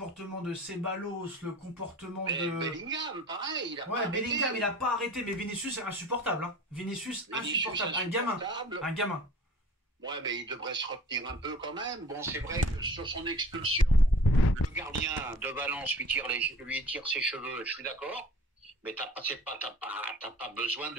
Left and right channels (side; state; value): both; normal; correlation 0.45